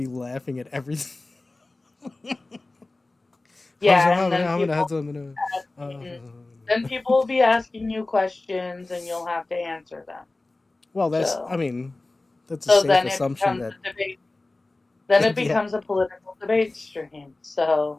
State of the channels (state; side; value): quieter; right; 3.1 dB